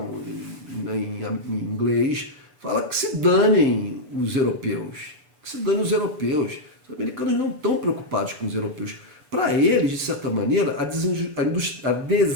em inglês, fala que se danem os europeus, que se danem os europeus. Os americanos não estão preocupados com os europeus. Para eles, de certa maneira, a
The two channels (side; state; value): left; late; 6.9 ms